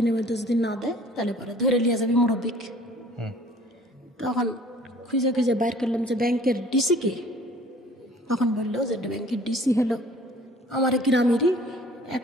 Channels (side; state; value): both; normal; correlation 0.52